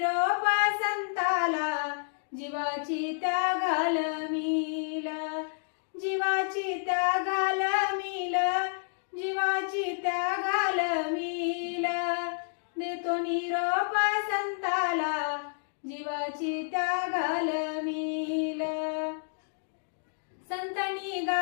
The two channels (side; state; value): right; silent; digital silence